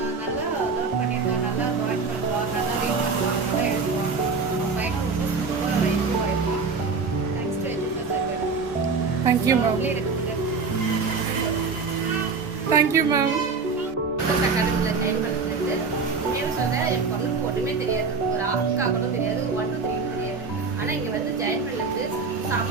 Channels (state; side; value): quieter; left; 4.7 dB